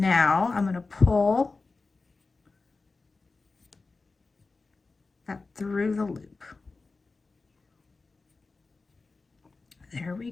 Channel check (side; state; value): right; quieter; 3.9 dB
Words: I'm going to pull that through the loop. There we